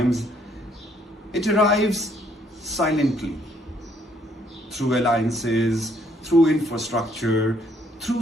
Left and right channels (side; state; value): both; normal; correlation 0.67